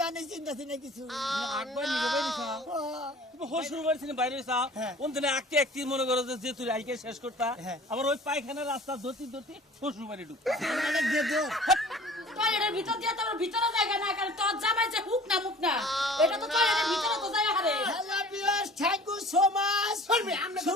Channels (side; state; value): both; normal; correlation 0.46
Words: আনে চিন্তা ছিল কিছু একবার নিকে বাইরেছা তুমি হসুর বাড়ি বাইরেছা কোন দিনে আঁকতে একটি মনে করো যে তুই আইকে শেষ করতা আবার ওই পায়খানার রাস্তা ধরতে ধরতে হসুর বাড়ি ঢুকতা টয়লেটের ভিতর দিয়ে তোমার ভিতরে জায়গা না কারণ তোর জামাই যে হুক না মুখ না এটা তো টয়লেটের ভিতরে তো জায়গা হারে hello viewers thank you so much